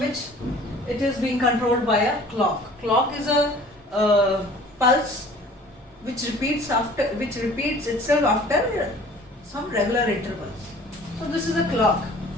it is being controlled by a clock. Clock is a pulse which repeats itself after some regular intervals. So this is a clock.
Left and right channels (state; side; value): normal; both; correlation 0.49